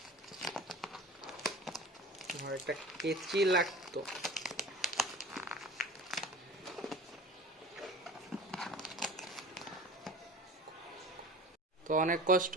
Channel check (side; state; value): both; normal; correlation 0.38